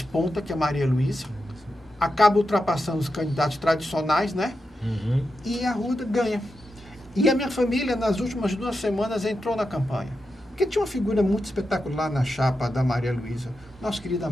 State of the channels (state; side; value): normal; both; correlation 0.88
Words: que é Maria Luísa, acaba ultrapassando os candidatos tradicionais, né? E a Arruda ganha. E a minha família, nas últimas 2 semanas, entrou na campanha. Porque tinha uma figura muito espetacular na chapa da Maria Luísa, nosso querido